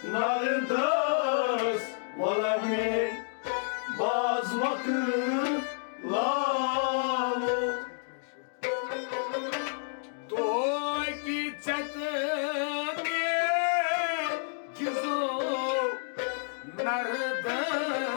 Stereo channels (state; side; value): silent; right; digital silence